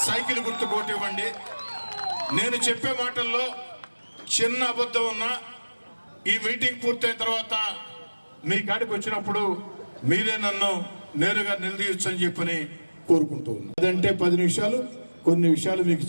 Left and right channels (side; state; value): both; inverted; correlation -1.00